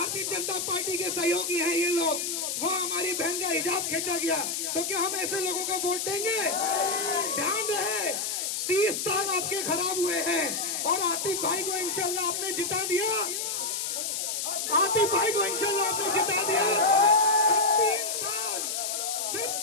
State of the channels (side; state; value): left; noise; hiss, 2 dB below the sound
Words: जनता पार्टी के सहयोगी हैं ये लोग, वो हमारी बहन का हिजाब खींचा गया, तो क्या हम ऐसे लोगों को वोट देंगे? ध्यान रहे, 30 साल आपके खराब हुए हैं और आतिफ भाई को इंशाल्लाह आपने जिता दिया, आतिफ भाई को इंशाल्लाह आपने जिता दिया। 3 साल, सिर्फ